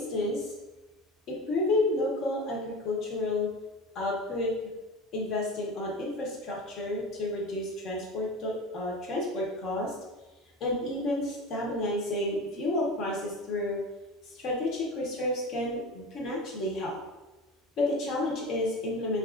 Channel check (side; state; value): both; normal; correlation 0.31